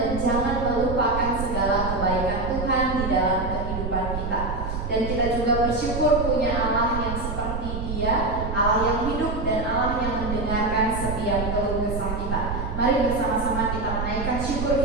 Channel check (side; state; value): right; noise; rumble, 4 dB below the sound